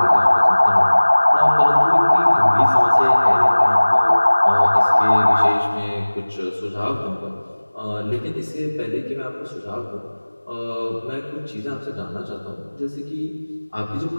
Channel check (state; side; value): inverted; both; correlation -1.00